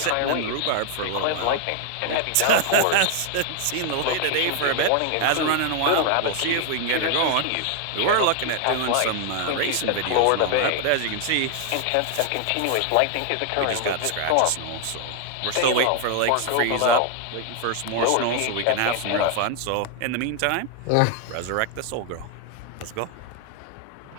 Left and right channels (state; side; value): different; both; correlation 0.00